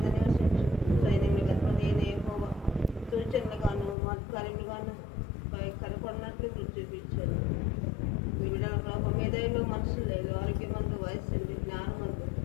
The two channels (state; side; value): drops out; right; at 4.0 s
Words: నివసించు సైన్యములు కనుక నేను యెహోవా సూచనలుగాను మత్కార్యములుగాను కనపడినట్లు గుర్తు చూపించాను. వివిధ ప్రభావ మేధైలో మనుషులలో ఆరోగ్యమందు వయస్సు జ్ఞానమందు